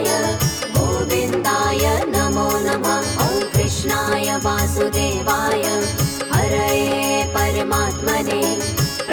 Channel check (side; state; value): both; identical; correlation 1.00